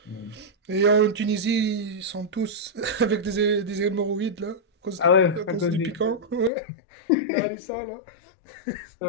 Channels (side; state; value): right; drops out; at 6.5 s